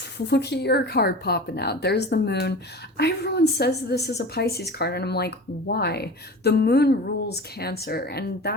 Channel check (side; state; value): both; normal; correlation 0.35